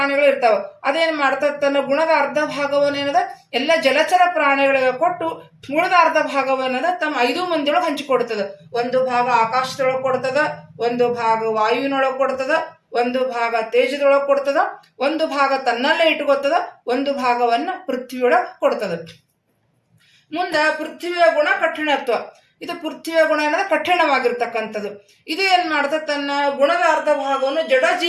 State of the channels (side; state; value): both; identical; correlation 1.00